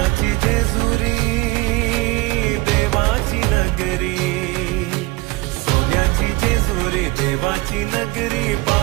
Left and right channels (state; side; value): quieter; left; 22.1 dB